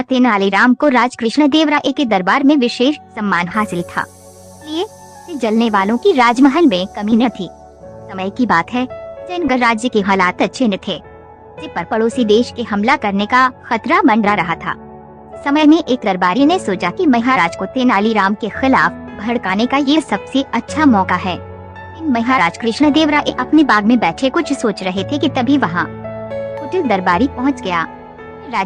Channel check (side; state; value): both; identical; correlation 1.00